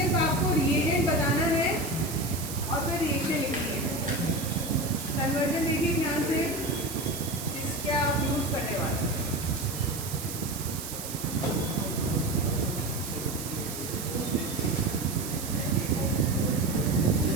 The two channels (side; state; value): right; noise; hiss, 8 dB below the sound